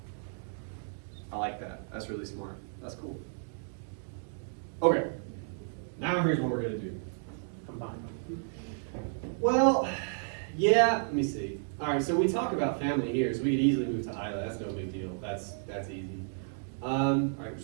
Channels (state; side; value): silent; left; digital silence